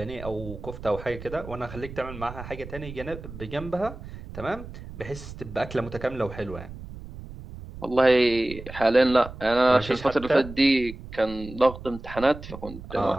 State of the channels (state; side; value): noise; right; rumble, 13 dB below the sound